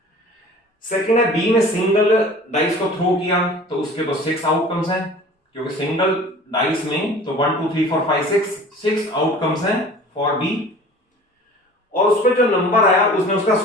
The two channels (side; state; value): both; normal; correlation 0.44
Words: सेकंड है बी ने सिंगल डाइस को थ्रो किया तो उसके तो 6 आउटकम्स हैं, क्योंकि सिंगल डाइस में तो 1 2 3 4 5 6 आउटकम्स हैं फॉर बी। और उसमें जो नंबर आया उसने उसका